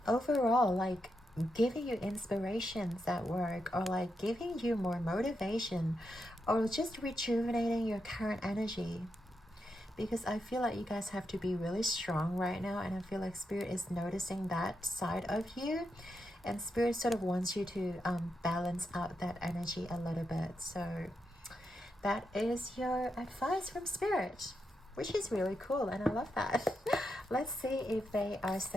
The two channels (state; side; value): normal; both; correlation 0.85